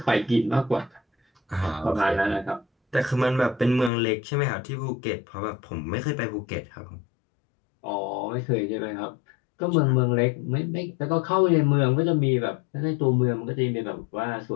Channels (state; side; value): drops out; right; at 3.9 s